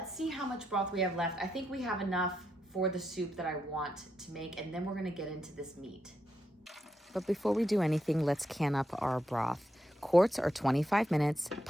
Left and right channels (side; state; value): both; normal; correlation 0.83